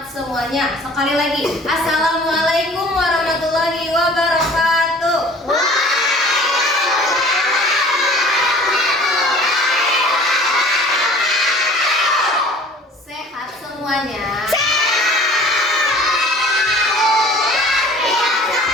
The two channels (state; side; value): normal; both; correlation 0.48